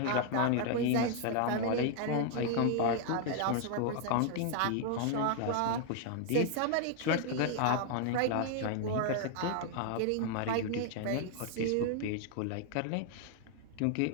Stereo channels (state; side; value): different; both; correlation 0.00